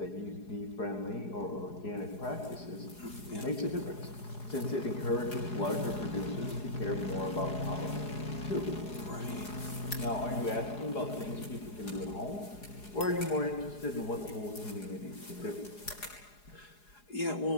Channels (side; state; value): right; late; 4.8 ms